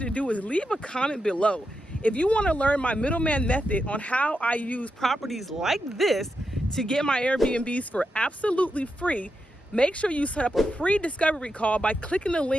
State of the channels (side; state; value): both; normal; correlation 0.86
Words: to do is leave a comment below. If you want to learn my middleman method on how I use properties like this to get my Airbnbs for absolutely free, make sure you set up a free discovery call by clicking the